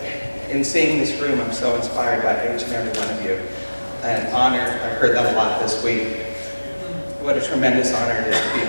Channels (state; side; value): inverted; both; correlation -1.00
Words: in seeing this room, I'm so inspired by each and every one of you. An honor. I've heard that a lot this week. What a tremendous honor it is to be